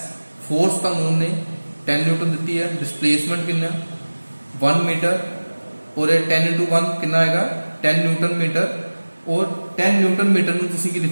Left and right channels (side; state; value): both; inverted; correlation -1.00